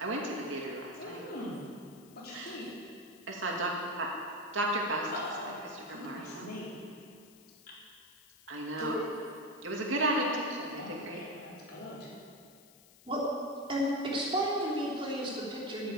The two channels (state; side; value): noise; left; hiss, 24 dB below the sound